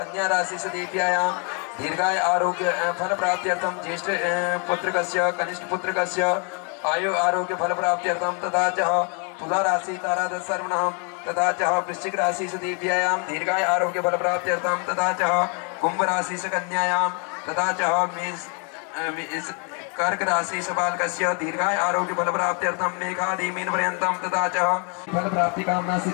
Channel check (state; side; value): quieter; right; 37.9 dB